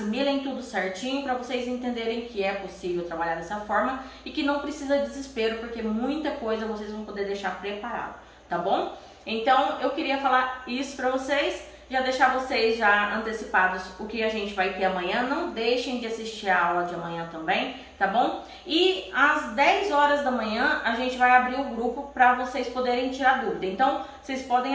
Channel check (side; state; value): both; identical; correlation 1.00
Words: tudo certinho para vocês entenderem que é possível trabalhar dessa forma e que não precisa de desespero, porque muita coisa vocês vão poder deixar preparado, tá bom? Então eu queria falar isso para vocês. Já deixar vocês já antecipados o que a gente vai ter amanhã. Não deixem de assistir a aula de amanhã também, tá bom? E às 10 horas da manhã a gente vai abrir o grupo para vocês poderem tirar dúvida. Então, vocês